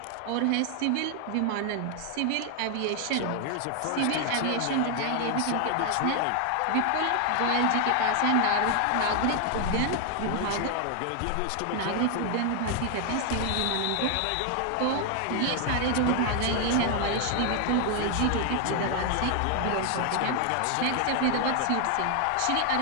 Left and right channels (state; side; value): different; both; correlation 0.00